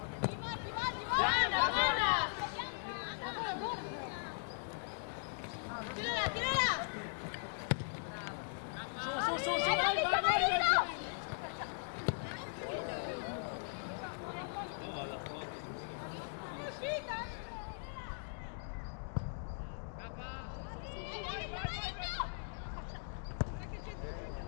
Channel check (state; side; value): silent; right; digital silence